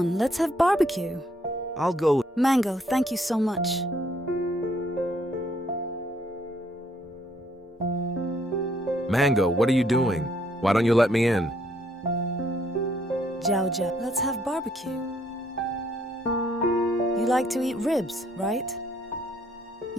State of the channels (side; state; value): both; normal; correlation 0.68